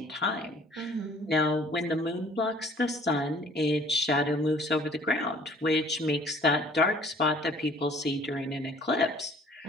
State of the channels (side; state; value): both; normal; correlation 0.54